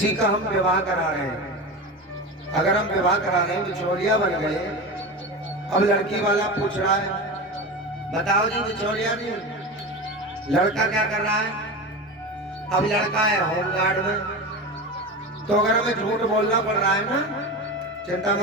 का हम विवाह करा रहे हैं। अगर हम विवाह करा रहे हैं, बिचौलिया बन गए, अब लड़की वाला पूछ रहा है, बताओ जी बिचौलिया जी लड़का क्या कर रहा है? अब लड़का है होमगार्ड में। तो अगर हमें झूठ बोलना पड़ रहा है ना, चिंता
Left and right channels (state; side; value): normal; both; correlation 0.25